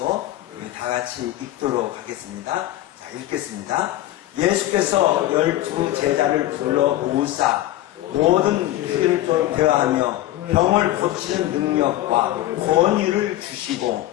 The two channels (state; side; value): quieter; right; 14.9 dB